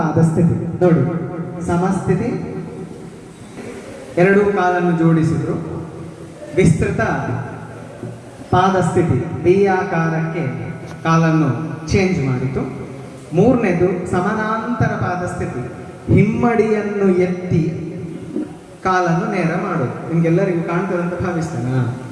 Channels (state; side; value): identical; both; correlation 1.00